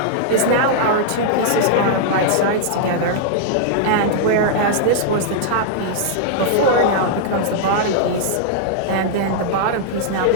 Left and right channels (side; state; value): both; different; correlation -0.01